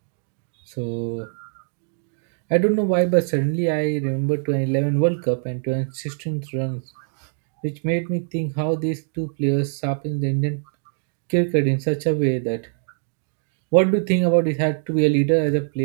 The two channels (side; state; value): left; silent; 63 dB below the other